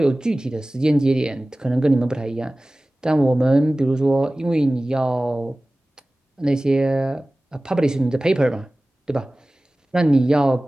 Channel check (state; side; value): normal; both; correlation 0.98